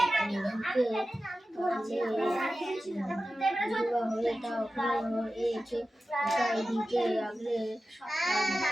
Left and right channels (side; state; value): both; normal; correlation 0.94